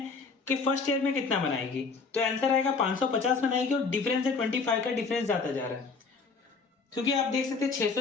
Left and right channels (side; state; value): right; quieter; 4.6 dB